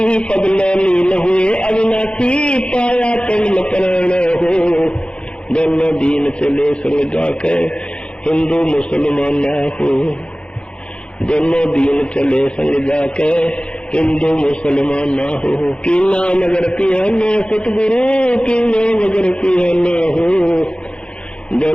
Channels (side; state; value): right; late; 0.056 ms